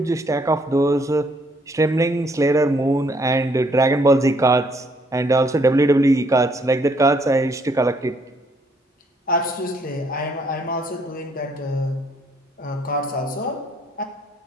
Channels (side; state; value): both; normal; correlation 0.67